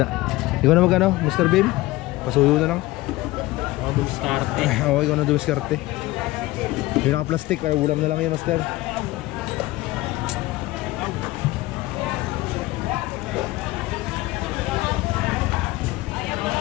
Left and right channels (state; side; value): quieter; right; 18.9 dB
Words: Ikaw na magano, Mr. Bim? Pasuyo na lang. Dumiskarte. Oo, ikaw na dumiskarte. Yung naka-plastic, ulam na lang yan, Master.